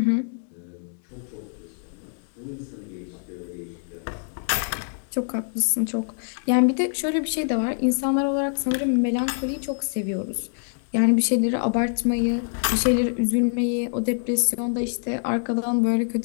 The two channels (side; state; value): right; silent; digital silence